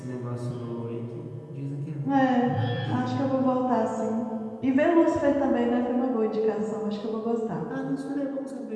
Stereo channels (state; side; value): identical; both; correlation 1.00